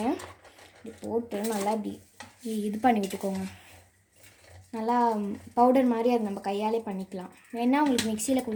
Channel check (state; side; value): identical; both; correlation 1.00